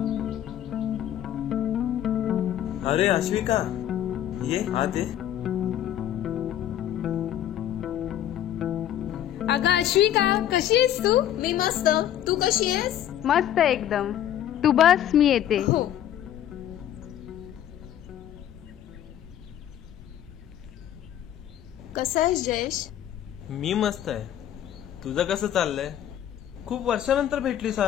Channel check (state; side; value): quieter; right; 11.2 dB